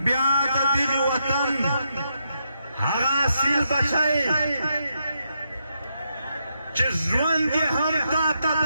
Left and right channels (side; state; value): both; inverted; correlation -0.81